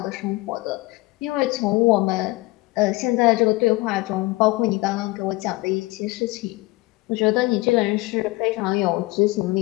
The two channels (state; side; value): quieter; right; 21.3 dB